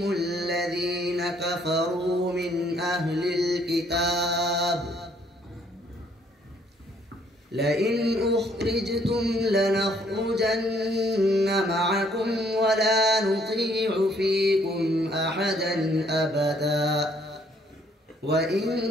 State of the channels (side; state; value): both; normal; correlation 0.65